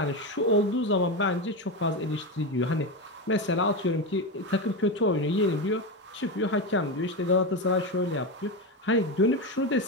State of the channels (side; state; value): both; normal; correlation 0.15